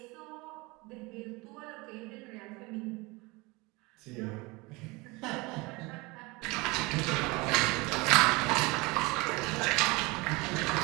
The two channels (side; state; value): left; quieter; 24.6 dB